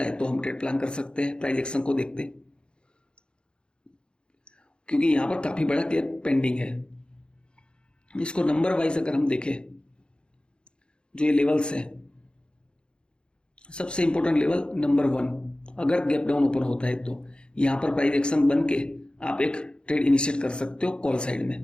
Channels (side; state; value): right; late; 0.052 ms